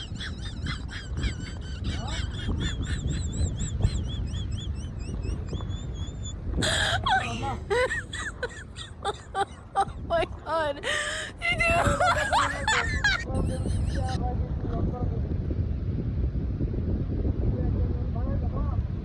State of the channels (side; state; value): both; identical; correlation 1.00